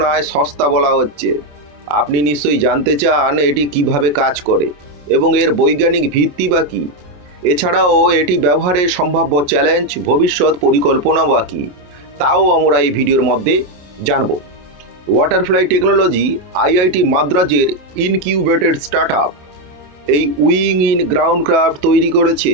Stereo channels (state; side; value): late; left; 28 ms